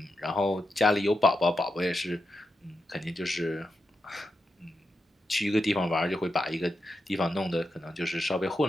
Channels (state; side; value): normal; both; correlation 0.87